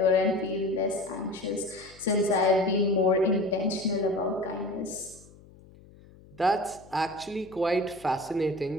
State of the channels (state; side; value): noise; left; hum, 23 dB below the sound